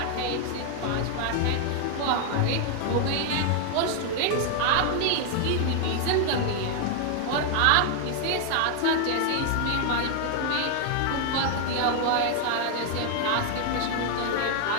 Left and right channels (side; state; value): both; different; correlation 0.00